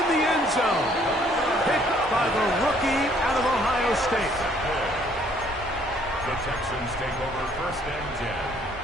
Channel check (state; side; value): normal; both; correlation 0.62